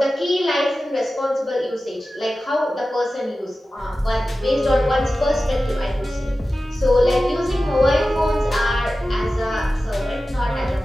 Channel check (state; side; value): normal; both; correlation 0.95